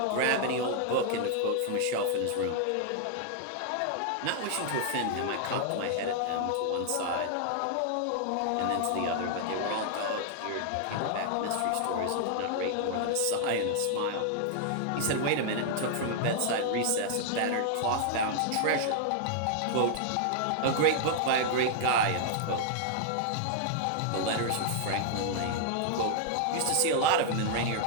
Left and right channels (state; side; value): different; both; correlation -0.01